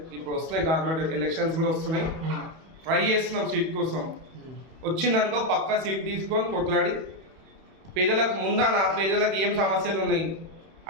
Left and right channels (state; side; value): late; left; 31 ms